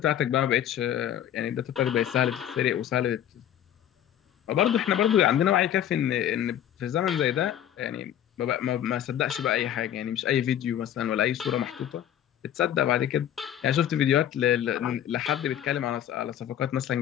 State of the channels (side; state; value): right; quieter; 10.8 dB